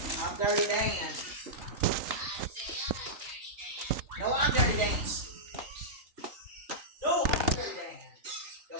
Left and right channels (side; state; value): left; late; 3.9 ms